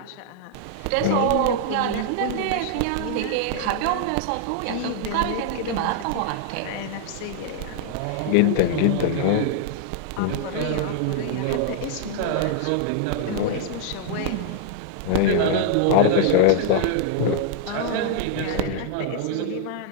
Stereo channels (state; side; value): different; both; correlation -0.01